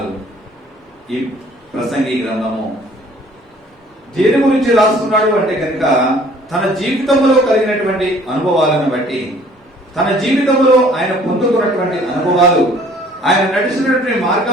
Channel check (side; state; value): both; normal; correlation 0.55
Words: ఈ ప్రసంగి గ్రంథము దేని గురించి రాస్తున్నాడు అంటే కనుక తన జీవితంలో కలిగినటువంటి అనుభవాలను బట్టి, తన జీవితంలో ఆయన పొందుకున్నటువంటి అనుభవాలు, ఆయన నడిచినటువంటి